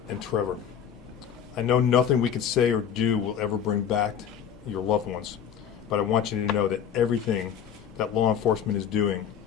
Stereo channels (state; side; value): quieter; right; 8.5 dB